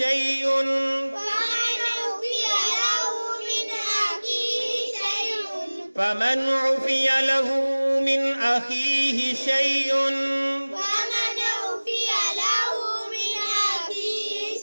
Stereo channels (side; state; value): both; inverted; correlation -1.00